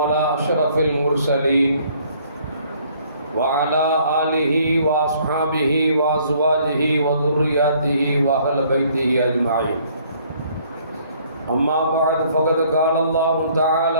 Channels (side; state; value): both; inverted; correlation -0.61